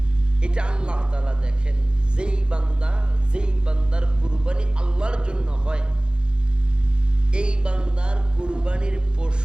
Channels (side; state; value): left; late; 0.050 ms